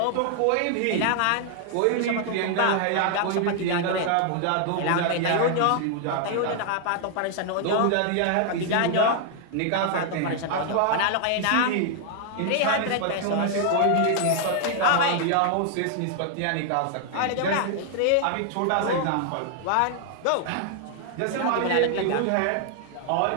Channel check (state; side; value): different; both; correlation 0.00